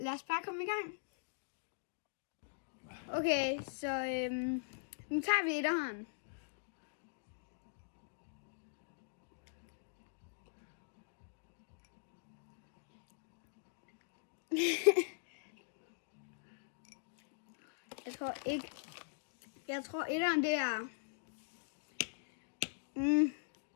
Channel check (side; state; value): right; silent; digital silence